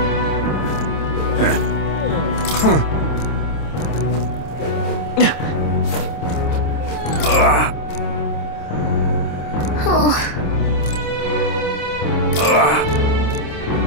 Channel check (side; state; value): right; late; 27 ms